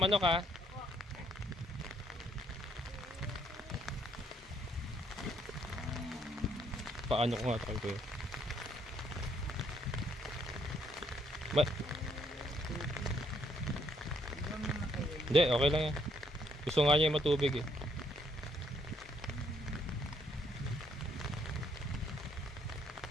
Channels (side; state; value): both; normal; correlation 0.70